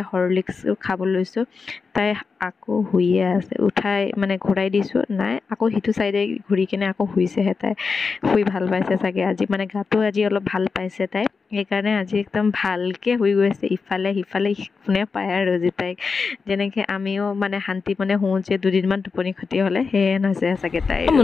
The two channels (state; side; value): quieter; right; 4.9 dB